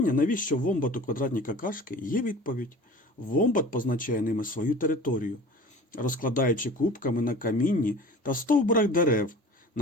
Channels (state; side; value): normal; both; correlation 0.41